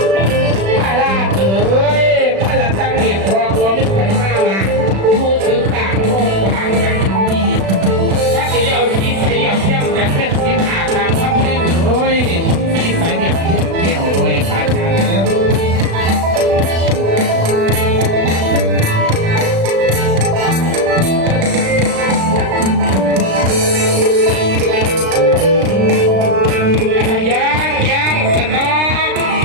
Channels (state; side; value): late; left; 36 ms